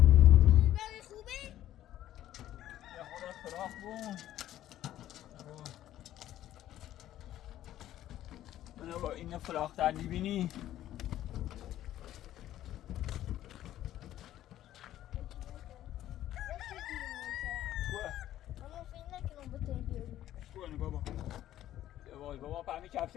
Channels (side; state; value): right; quieter; 12.9 dB